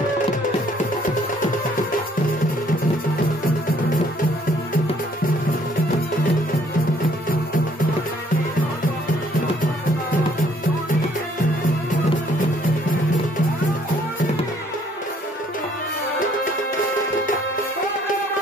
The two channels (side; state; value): both; normal; correlation 0.63